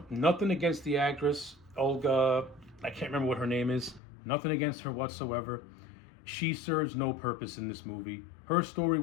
nothing against the actress Olga. I can't remember what her name is. Nothing against her whatsoever. She serves no purpose in this movie. Her story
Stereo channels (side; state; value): right; drops out; at 4.0 s